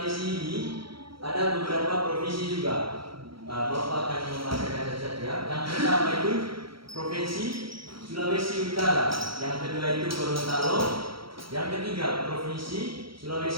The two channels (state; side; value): late; left; 0.75 ms